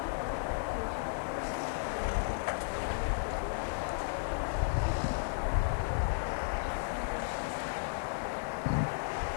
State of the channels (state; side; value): silent; right; digital silence